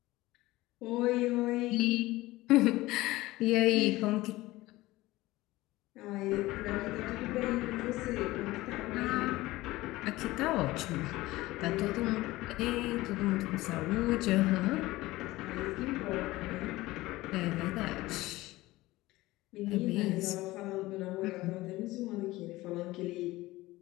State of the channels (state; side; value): quieter; right; 18.7 dB